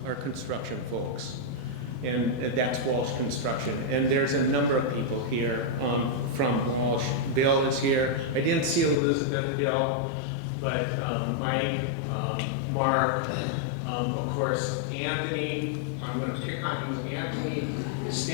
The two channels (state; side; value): drops out; right; at 9.0 s